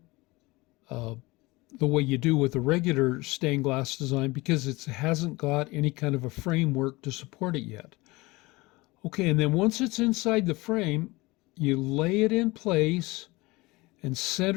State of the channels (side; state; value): right; quieter; 22.4 dB